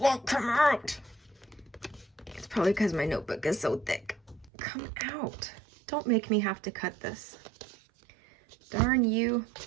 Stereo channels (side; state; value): left; drops out; at 4.5 s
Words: come out. It's probably because my notebook is so thick. Come out. Don't make me have to cut this. Darn you.